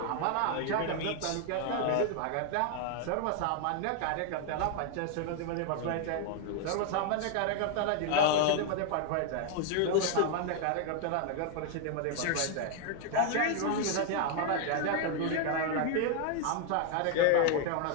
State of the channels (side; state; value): both; different; correlation 0.00